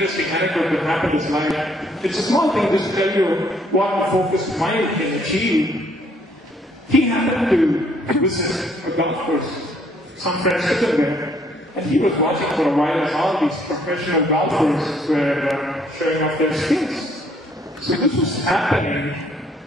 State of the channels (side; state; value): both; normal; correlation 0.65